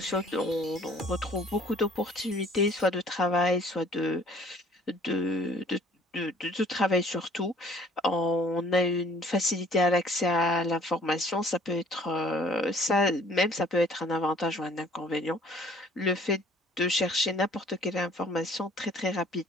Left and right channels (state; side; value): normal; both; correlation 0.55